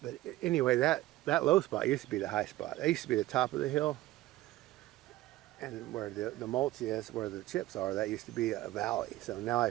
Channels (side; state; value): left; quieter; 16.5 dB